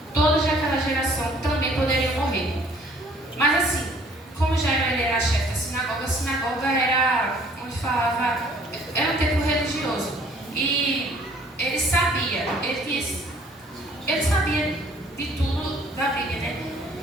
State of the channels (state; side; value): normal; both; correlation 0.57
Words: todos daquela geração também poderiam morrer. Mas assim, como Jairo ele era chefe da sinagoga, a sinagoga era onde falava, era um templo religioso. E ele sabia de tudo da Bíblia, né?